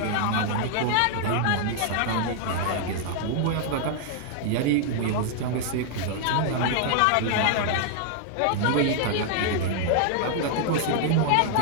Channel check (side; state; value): both; different; correlation 0.00